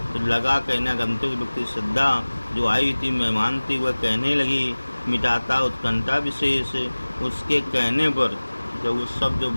तो लगा कहने आगंतुक व्यक्ति, श्रद्धा जो आई हुई थी, मेहमान थी, वह कहने लगी, मिटाता उत्कंठा विशेष। उसके कहने पर जब वो शब्द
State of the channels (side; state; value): both; inverted; correlation -1.00